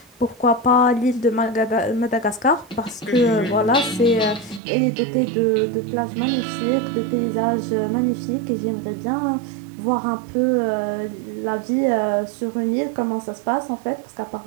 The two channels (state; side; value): drops out; left; at 4.6 s